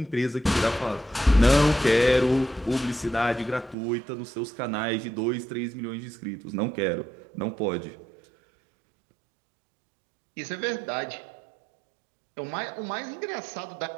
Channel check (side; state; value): left; drops out; at 3.8 s